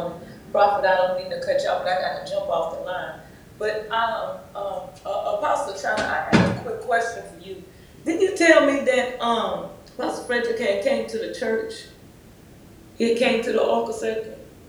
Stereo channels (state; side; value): identical; both; correlation 1.00